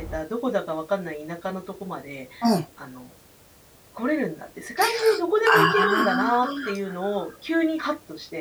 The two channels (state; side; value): identical; both; correlation 1.00